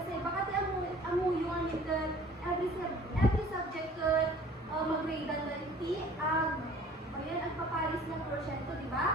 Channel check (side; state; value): both; normal; correlation 0.49